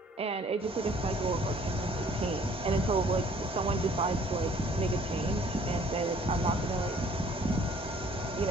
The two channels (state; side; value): normal; both; correlation 0.57